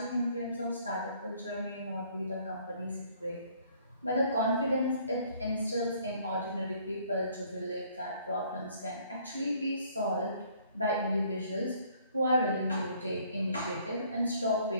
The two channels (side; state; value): both; inverted; correlation -0.61